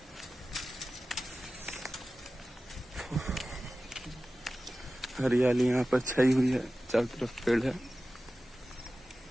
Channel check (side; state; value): both; normal; correlation 0.95